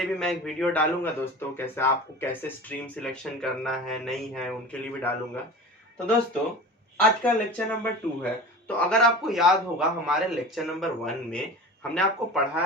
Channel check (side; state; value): both; normal; correlation 0.35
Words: भी मैं एक वीडियो डालूंगा दोस्तों, कैसे आपको कैसे स्ट्रीम सिलेक्शन करना है, नहीं है, उनके लिए भी डालूंगा। तो दोस्तों, आज का लेक्चर नंबर 2 है। तो अगर आपको याद होगा, हमारे लेक्चर नंबर 1 में हमने आपको